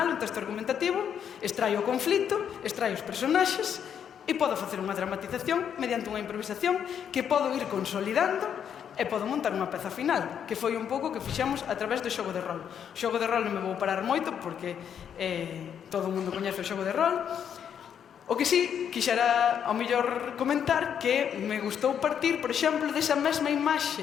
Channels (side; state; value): right; quieter; 8.4 dB